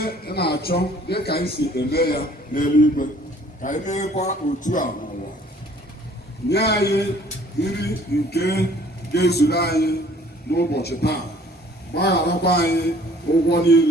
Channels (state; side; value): normal; both; correlation 0.56